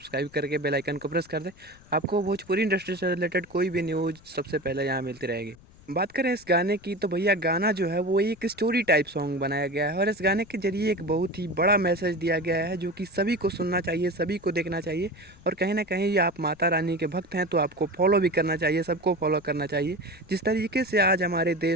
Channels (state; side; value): noise; left; rumble, 24 dB below the sound